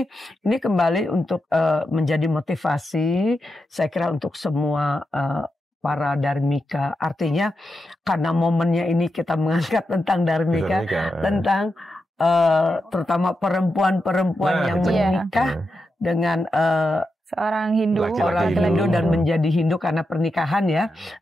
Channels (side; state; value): both; normal; correlation 0.87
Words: kembali untuk menjadi motivasi saya kira untuk semua para dharmika. Artinya karena momennya ini kita mengangkat tentang dharmika, tentang terutama perempuan-perempuan yang menikah dengan seorang Hindu, orang Hindu dan menjadi Hindu karena pernikahan ya.